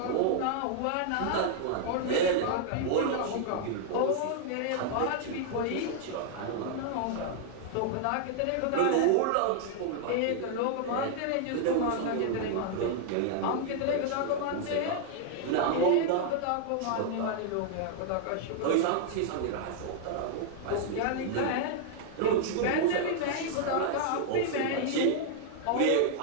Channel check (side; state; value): both; different; correlation -0.01